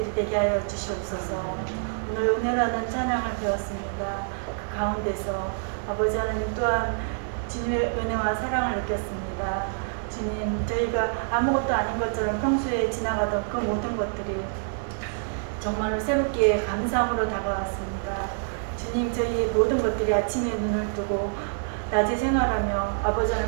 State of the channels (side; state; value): left; silent; digital silence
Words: 되게 하여 주시옵소서. 오늘 은혜라는 찬양을 배웠습니다. 그 가운데서 아버지 하나님 또한 주님의 은혜와 사랑을 느꼈습니다. 주님 저희가 아무것도 아닌 것처럼 평소에 지나가던 그 모든 것들이 정말로 새롭게 감사함으로 다가왔습니다. 주님 저희 모든 것들이 아침에 눈을 뜨고 낮에 생활하며 아버지